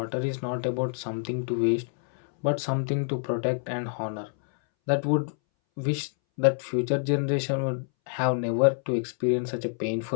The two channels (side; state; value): right; silent; 60 dB below the other